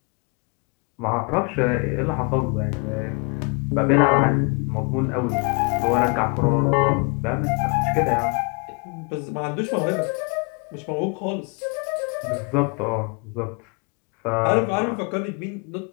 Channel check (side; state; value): right; quieter; 32.4 dB